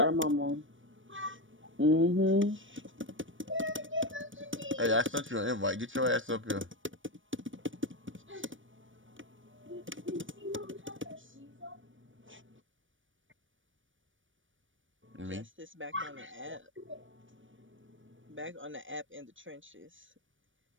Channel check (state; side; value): late; left; 0.56 ms